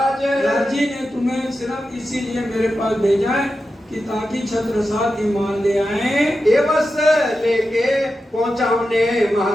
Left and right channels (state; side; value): normal; both; correlation 0.91